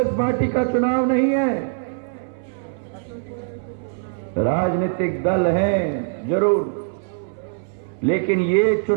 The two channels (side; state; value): left; silent; 62 dB below the other